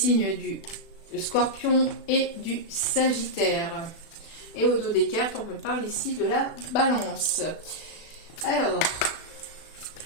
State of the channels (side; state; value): right; late; 36 ms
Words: du Scorpion et du Sagittaire. Et au dos des cartes, on me parle ici de la Balance. Alors,